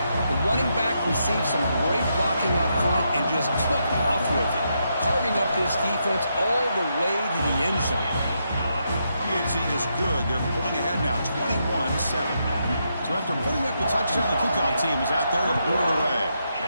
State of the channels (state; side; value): inverted; both; correlation -0.81